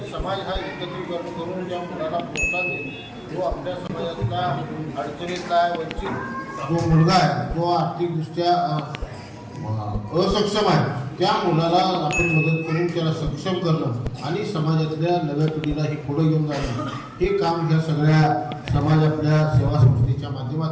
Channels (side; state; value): both; identical; correlation 1.00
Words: समाज हा एकत्रीकरण करून ज्या मुलाला प्रोत्साहन देईल जो आपल्या समाजातला अडचणीतला वंचित जो मुलगा आहे जो आर्थिकदृष्ट्या असक्षम आहे त्या मुलाला आपण मदत करून त्याला सक्षम करणं आणि समाजातल्या नव्या पिढीला हे पुढे घेऊन जाणं हे काम ह्या सगळ्या समाज आपल्या सेवा संस्थेच्या